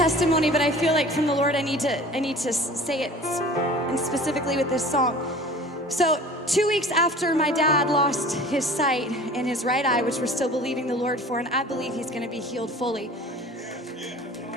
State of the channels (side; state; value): both; normal; correlation 0.43